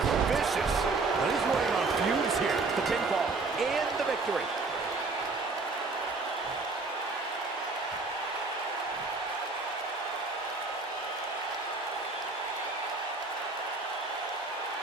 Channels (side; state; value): left; quieter; 3.8 dB